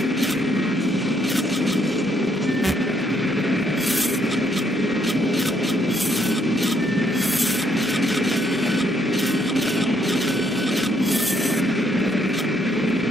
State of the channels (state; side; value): normal; both; correlation 0.71